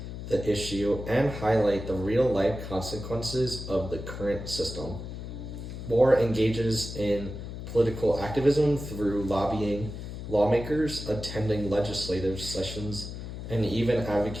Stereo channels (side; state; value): left; noise; hum, 8 dB below the sound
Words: the issue and highlight the real-life consequences of the current system. Moore engages in political activism through lobbying lawmakers, attending legislative sessions, and even